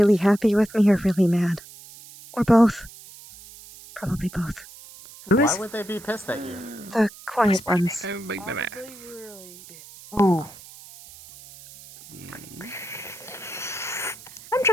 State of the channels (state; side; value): noise; right; hiss, 19 dB below the sound